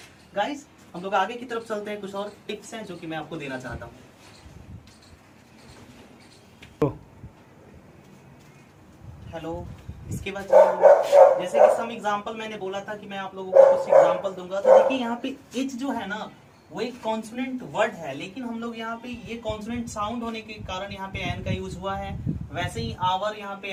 गाइस, हम लोग आगे की तरफ चलते हैं, कुछ और टिप्स हैं जो कि मैं आपको देना चाहता हूँ। हेलो, इसके बाद जैसे कि सम एग्जांपल मैंने बोला था कि मैं आप लोगों को कुछ एग्जांपल दूंगा, तो देखिए यहाँ पे एच जो है ना वो एक कॉन्सोनेंट वर्ड है लेकिन हम लोग यहाँ पे ये कॉन्सोनेंट साउंड होने के कारण यहाँ पे एन का यूज हुआ है। वैसे ही आवर यहाँ पे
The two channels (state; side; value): identical; both; correlation 1.00